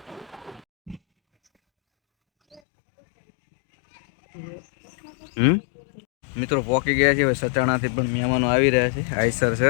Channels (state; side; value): drops out; right; at 2.6 s